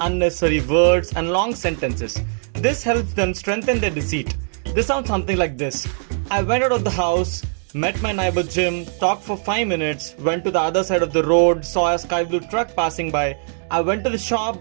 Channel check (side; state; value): left; silent; digital silence